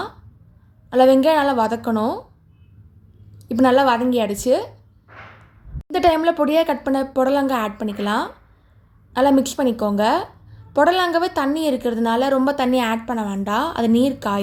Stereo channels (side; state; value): both; identical; correlation 1.00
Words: வெங்காயம் நல்லா வதக்கணும். இப்போ நல்லா வதங்கிடுச்சு. இந்த டைமில் பொடியாக கட் பண்ண புடலங்காய் ஆட் பண்ணிக்கலாம். நல்லா மிக்ஸ் பண்ணிக்கோங்க. புடலங்காவே தண்ணி இருக்கிறதுனால ரொம்ப தண்ணி ஆட் பண்ண வேண்டாம். அது நீர்